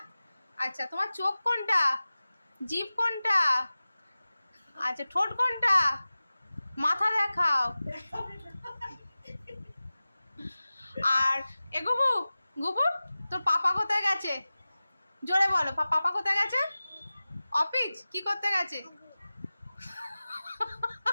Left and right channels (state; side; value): inverted; both; correlation -0.96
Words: আচ্ছা, তোমার চোখ কোনটা, জিভ কোনটা, আচ্ছা ঠোঁট কোনটা, মাথা দেখাও। আর এ গুবু, গুবু তোর পাপা কোথায় গেছে? জোরে বলো, পাপা কোথায় গেছে? অফিস কি করতে গেছে?